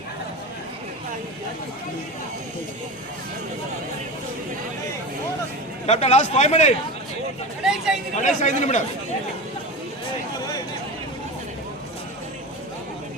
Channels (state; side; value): normal; both; correlation 0.27